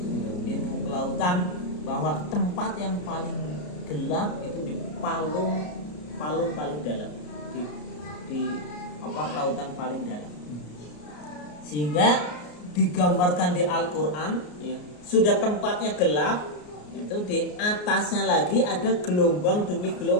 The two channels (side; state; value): right; late; 33 ms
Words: ilmu kelautan, bahwa tempat yang paling gelap itu di palung paling dalam, di lautan paling dalam. Sehingga digambarkan di Al-Quran ya, sudah tempatnya gelap, itu di atasnya lagi ada gelombang demi